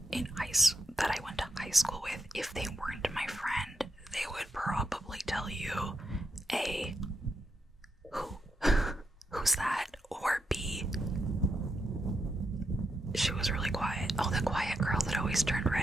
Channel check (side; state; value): both; normal; correlation 0.83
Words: that I went to high school with if they weren't my friend, they would probably tell you A, who's that? Or B, she was really quiet. Oh, the quiet girl that always turned